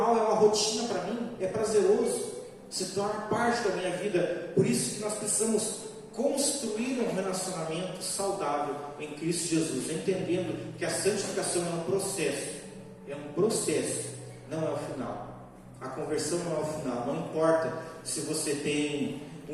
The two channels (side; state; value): both; identical; correlation 1.00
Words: é uma rotina para mim, é prazeroso, se torna parte da minha vida. Por isso que nós precisamos construir um relacionamento saudável em Cristo Jesus, entendendo que a santificação é um processo, não é o final. A conversão não é o final. Não importa se você tem